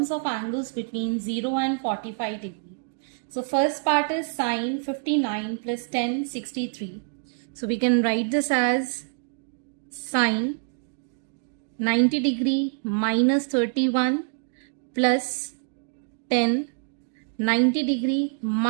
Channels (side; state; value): left; silent; digital silence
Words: of angles between 0 and 45 degree. So first part is sin 59 plus 10 63. So we can write this as sin 90 degree minus 31 plus 10 90 degree